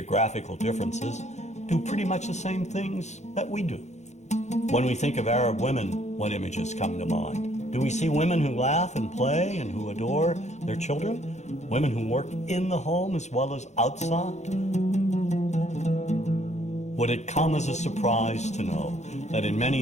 differences, do pretty much the same things that we do. When we think of Arab women, what images come to mind? Do we see women who laugh and play and who adore their children? Women who work in the home as well as outside? Would it come as a surprise to know that in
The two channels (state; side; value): late; right; 0.33 ms